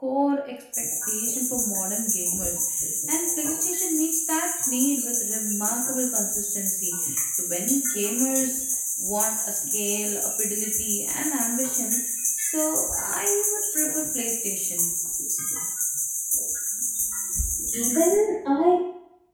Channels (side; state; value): both; identical; correlation 1.00